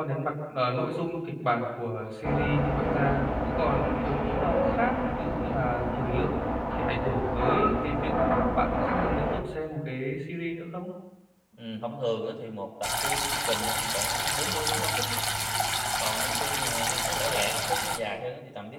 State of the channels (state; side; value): identical; both; correlation 1.00